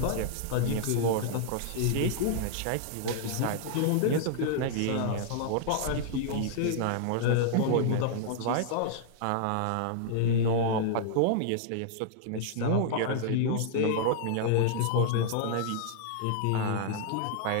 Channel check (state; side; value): different; both; correlation -0.01